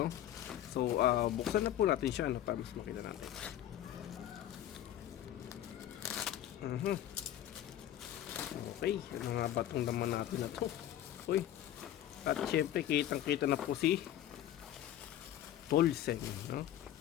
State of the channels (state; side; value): quieter; right; 12.0 dB